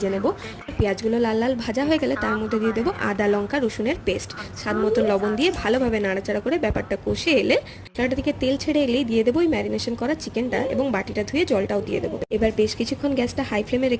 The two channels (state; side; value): identical; both; correlation 1.00